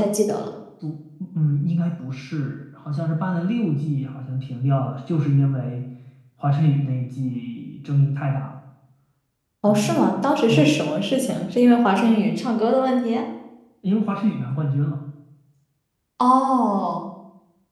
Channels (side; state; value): both; identical; correlation 1.00